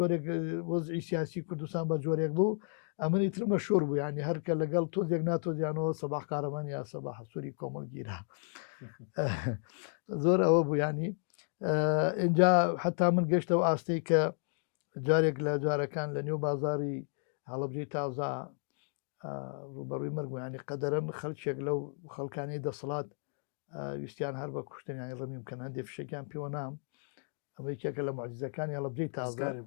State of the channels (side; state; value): right; silent; 56 dB below the other